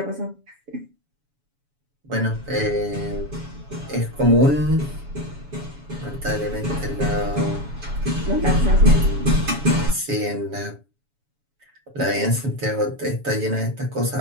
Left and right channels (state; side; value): late; left; 7.1 ms